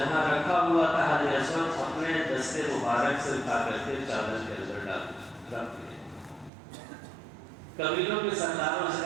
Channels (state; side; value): drops out; left; at 6.5 s